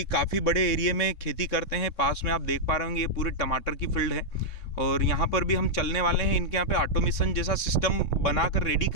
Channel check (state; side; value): late; right; 3.7 ms